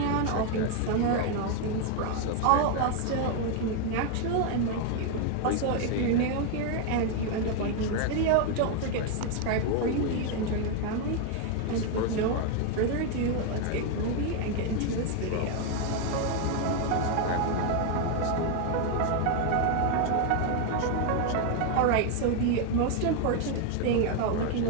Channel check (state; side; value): different; both; correlation 0.01